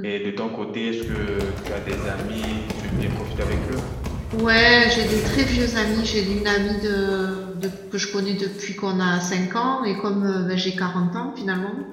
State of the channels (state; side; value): identical; both; correlation 1.00